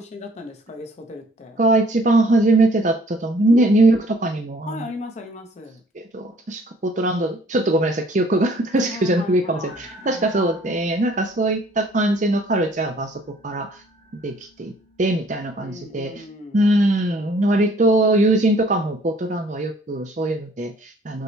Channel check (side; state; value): both; normal; correlation 0.58